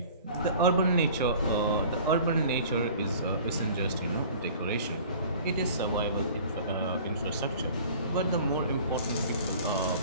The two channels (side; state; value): both; inverted; correlation -0.46